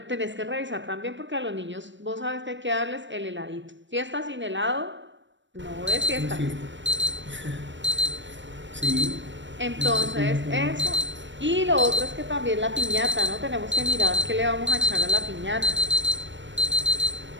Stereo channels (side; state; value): left; late; 0.54 ms